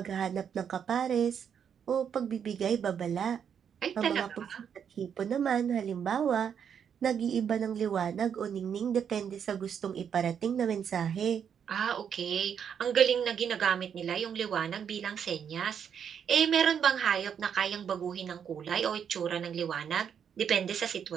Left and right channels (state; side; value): quieter; left; 7.9 dB